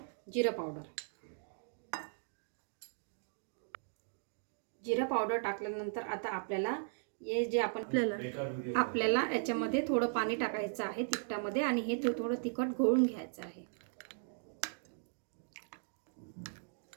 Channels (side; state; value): left; silent; digital silence